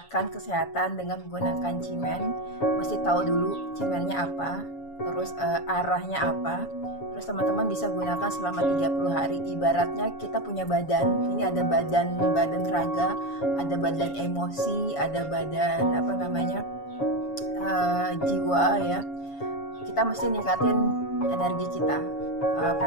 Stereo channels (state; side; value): late; right; 7.1 ms